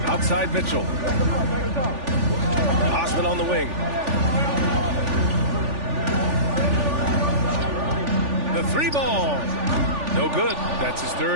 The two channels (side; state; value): left; late; 3.4 ms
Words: Outside Mitchell. Osman on the wing. The 3 ball. No good. That's his